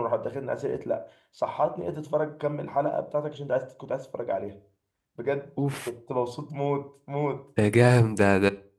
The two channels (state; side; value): identical; both; correlation 1.00